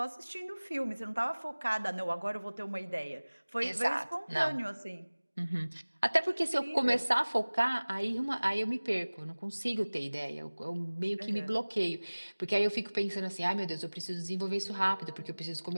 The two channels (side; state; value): both; inverted; correlation -1.00